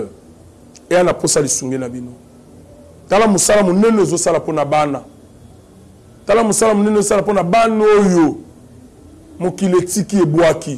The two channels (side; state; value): both; identical; correlation 1.00